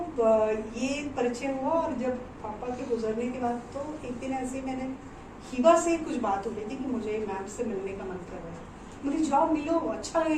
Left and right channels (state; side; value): identical; both; correlation 1.00